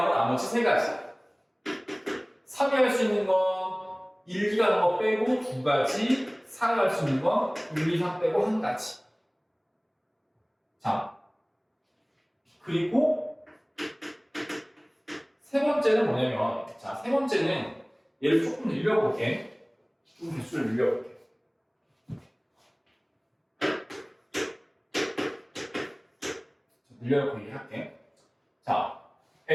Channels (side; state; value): both; identical; correlation 1.00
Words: 나머지 3가지. 3이 할 수 있는 건 1, 2가 하는 거 빼고 2가지. 4가 할 수 있는 건 1, 2, 3 빼고 1가지. 자, 그리고 세 번째는 뭐냐면 자, 세 번째는 얘를 조금 늘려볼게. 좀 개수를 늘려볼게. 늘려놓고 얘기할게. 자,